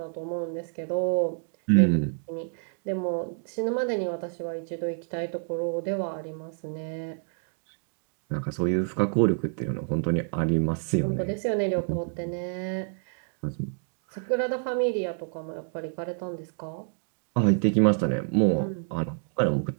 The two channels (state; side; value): silent; left; 59 dB below the other